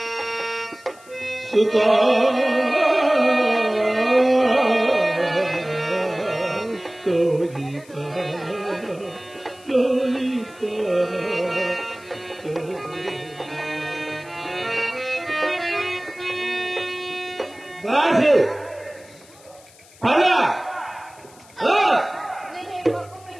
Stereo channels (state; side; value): noise; left; hiss, 25 dB below the sound